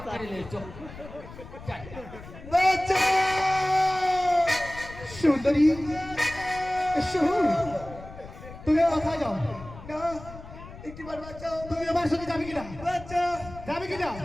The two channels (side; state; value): left; noise; rumble, 15 dB below the sound